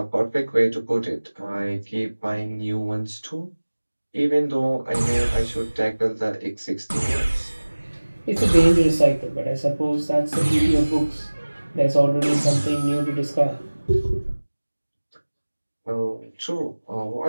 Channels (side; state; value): both; inverted; correlation -1.00